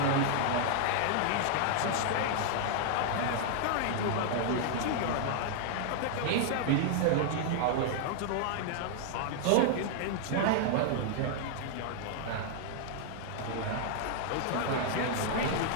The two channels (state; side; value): different; both; correlation -0.01